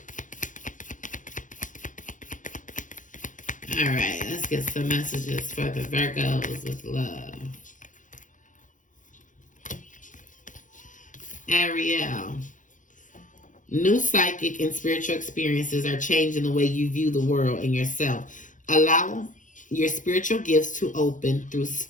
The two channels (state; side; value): late; right; 0.37 ms